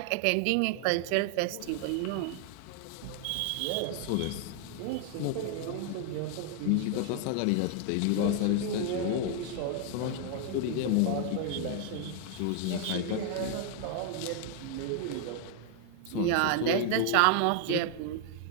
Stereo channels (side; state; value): both; different; correlation 0.00